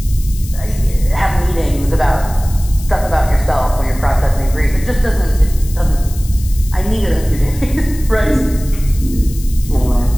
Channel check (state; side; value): noise; left; hiss, 16 dB below the sound